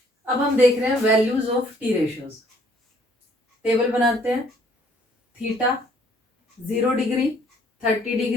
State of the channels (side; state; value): both; normal; correlation 0.62